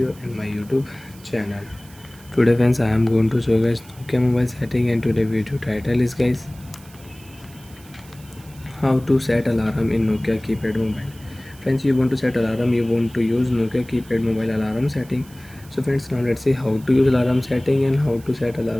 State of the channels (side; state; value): right; noise; hiss, 24 dB below the sound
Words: in my YouTube channel. Today friends, I am going to show you guys Nokia mobile setting, and today video title is guys how to set alarm in Nokia keypad mobile. Friends, you want to set alarm, you want to use Nokia keypad mobile alarm setting. So friends, now let's see how to use alarm setting and how to set